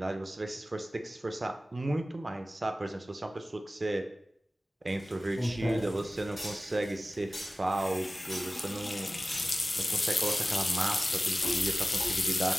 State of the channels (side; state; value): both; normal; correlation 0.97